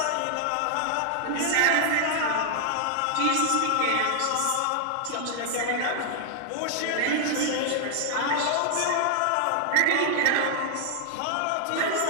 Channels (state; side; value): different; both; correlation 0.00